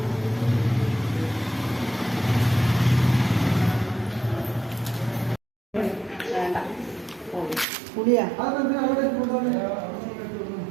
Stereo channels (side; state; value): left; drops out; at 7.7 s